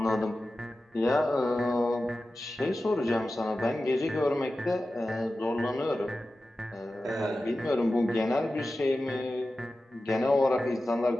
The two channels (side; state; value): both; normal; correlation 0.94